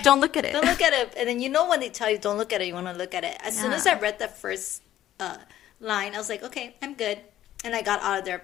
"Don't look at it. Don't look at it." And then when they tell you don't look at it, you want to look at it. As soon as I read that first line. I was like, okay, I'm good. And I got out of there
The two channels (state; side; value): quieter; right; 12.8 dB